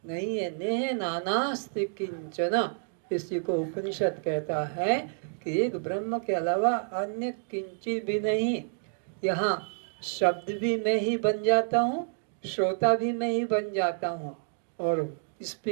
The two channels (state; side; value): silent; left; digital silence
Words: नहीं है। नेह नानास्ति किंचन, इसी को उपनिषद कहता है कि एक ब्रह्म के अलावा अन्य किंचित भी नहीं। यहाँ शब्द भी मैं ही बन जाता हूँ, श्रोता भी मैं ही बन जाता हूँ, और